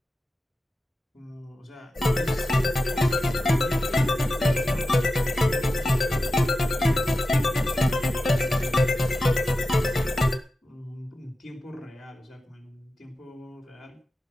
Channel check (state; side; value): normal; both; correlation 0.92